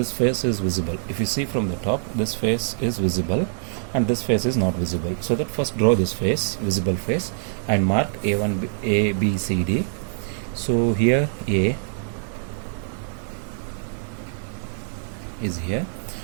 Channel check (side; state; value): left; silent; 60 dB below the other